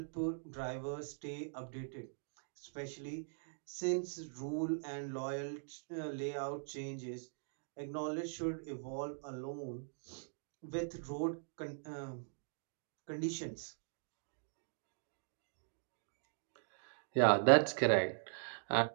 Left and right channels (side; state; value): left; silent; digital silence